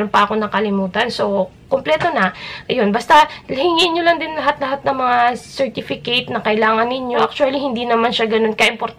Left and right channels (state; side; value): identical; both; correlation 1.00